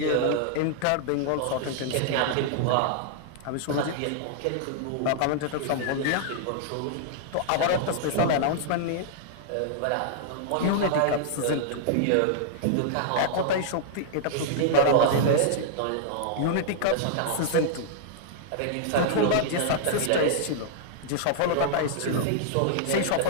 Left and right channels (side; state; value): both; different; correlation -0.01